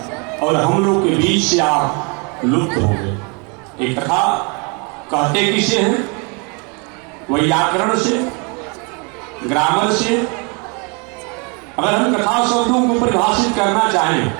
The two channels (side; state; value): left; quieter; 32.9 dB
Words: और हम लोग के बीच से आप लुप्त हो गए। ये कथा कहते किसे हैं? व्याकरण से, ग्रामर से। अगर हम कथा शब्दों को परिभाषित करना चाहें